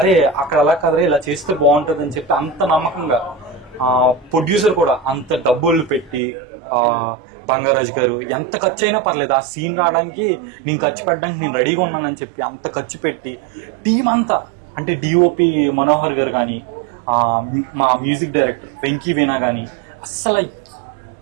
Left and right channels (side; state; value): left; drops out; at 6.2 s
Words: అక్కడ అలా కదరే ఇలా చేస్తే బాగుంటుంది అని చెప్పి అంత నమ్మకంగా, ప్రొడ్యూసర్ కూడా అంత డబ్బులు పెట్టి బంగారాజు గారు ఎంత ఖర్చు అయినా పర్లేదు ఆ సీన్ రావడానికి నేను ఖర్చు పెట్టడానికి నేను రెడీగా ఉన్నానని చెప్పి అంత ఖర్చు పెట్టి టీం అంతా, అంటే డిఓపి మనోహర్ గారు కానీ, మా మ్యూజిక్ డైరెక్టర్ వెంకీ వీణా కానీ, అస్సలు